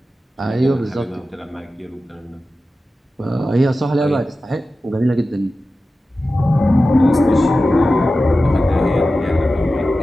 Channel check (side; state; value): both; normal; correlation 0.94